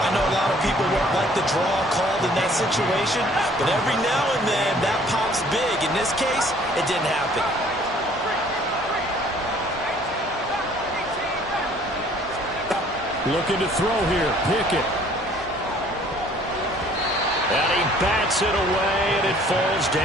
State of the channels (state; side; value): normal; both; correlation 0.57